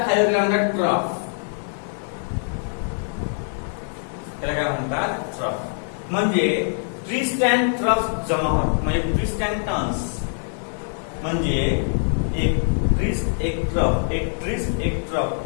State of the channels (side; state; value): right; silent; digital silence